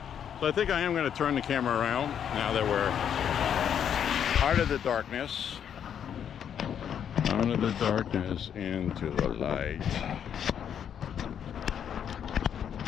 So I think I am going to turn the camera around now that we're out of the darkness. Out of the darkness into the light.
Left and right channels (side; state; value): right; quieter; 8.6 dB